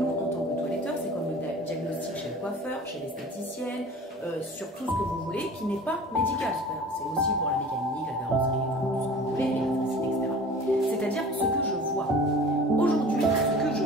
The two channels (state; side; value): normal; both; correlation 0.42